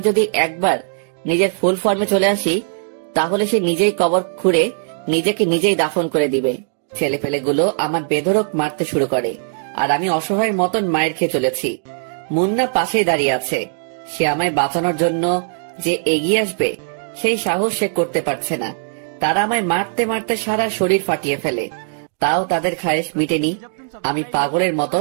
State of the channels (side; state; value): left; silent; digital silence